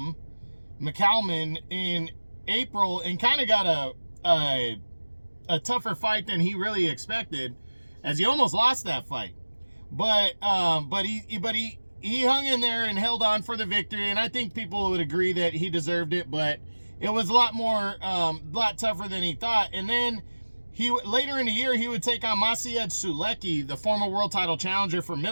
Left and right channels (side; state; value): both; inverted; correlation -1.00